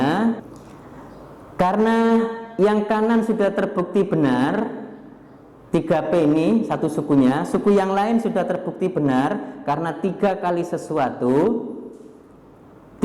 karena yang kanan sudah terbukti benar, 3P ini satu sukunya, suku yang lain sudah terbukti benar karena 3 kali sesuatu,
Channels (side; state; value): both; identical; correlation 1.00